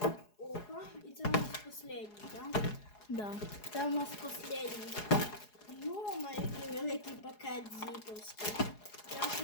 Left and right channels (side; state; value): right; late; 4.8 ms